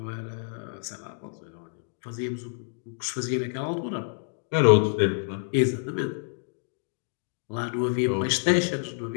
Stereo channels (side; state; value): right; silent; digital silence